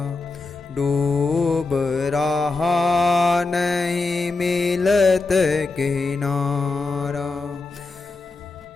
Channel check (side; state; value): right; quieter; 3.7 dB